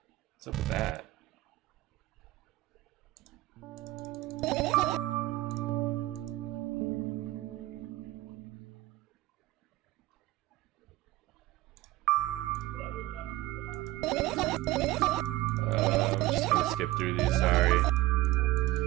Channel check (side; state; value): left; quieter; 17.3 dB